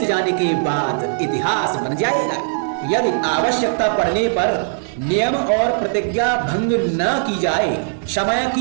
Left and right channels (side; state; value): left; silent; 58 dB below the other